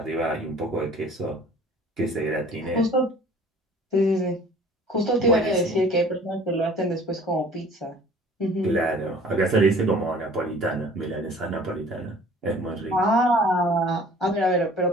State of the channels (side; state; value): both; normal; correlation 0.49